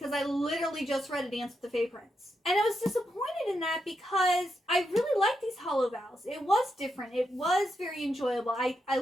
I literally just read A Dance with the Fae Prince. And I was disappointed in that because I really liked these Hollow Vows. It was different. It was very enjoyable. I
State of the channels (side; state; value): both; normal; correlation 0.84